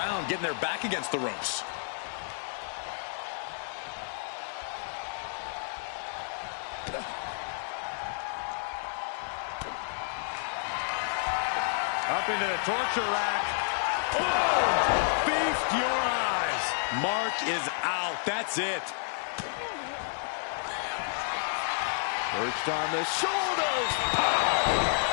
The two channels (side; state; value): right; silent; digital silence